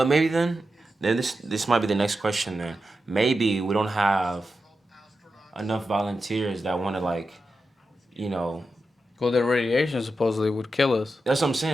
Maybe then this might be the next question. Then maybe we don't have enough volunteers that want to like, you know. Well, the radiation supposedly would kill us. That's what I'm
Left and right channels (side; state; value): both; normal; correlation 0.89